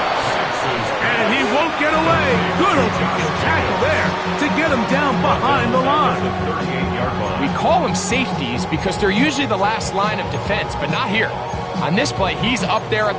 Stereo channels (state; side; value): identical; both; correlation 1.00